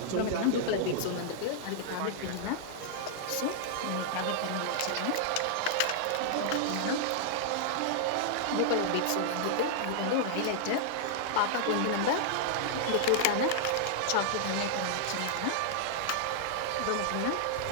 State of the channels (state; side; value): different; both; correlation -0.01